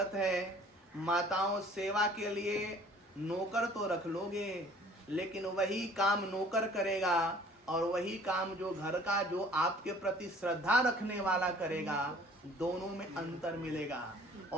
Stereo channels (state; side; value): normal; both; correlation 0.52